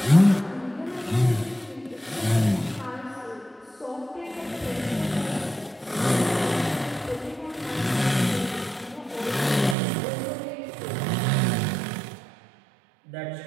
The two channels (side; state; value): left; drops out; at 9.8 s